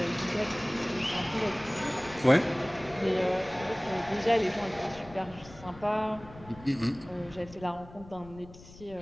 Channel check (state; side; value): noise; left; rumble, 19 dB below the sound